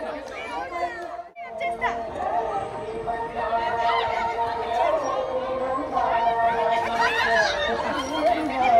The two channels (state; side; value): identical; both; correlation 1.00